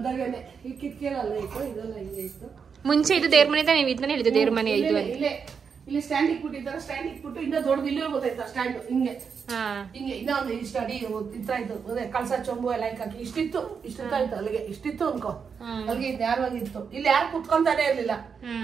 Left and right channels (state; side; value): quieter; left; 6.2 dB